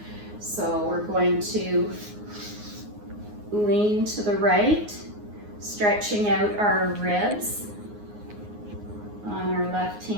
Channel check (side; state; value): left; late; 9.6 ms